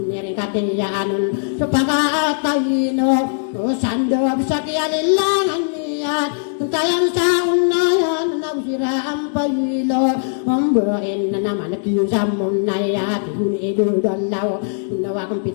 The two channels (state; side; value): silent; right; digital silence